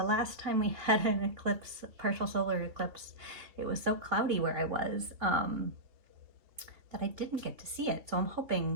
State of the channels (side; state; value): left; late; 3.0 ms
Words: last time we had an eclipse, partial solar eclipse, it was so cloudy where I was that I didn't get to see it. So I'm